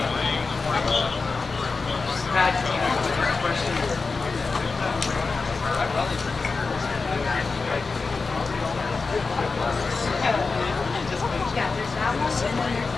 Yeah, there's that one, and then there's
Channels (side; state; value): right; quieter; 4.3 dB